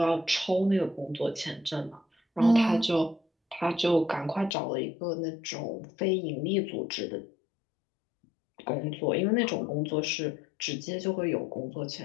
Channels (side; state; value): right; drops out; at 4.5 s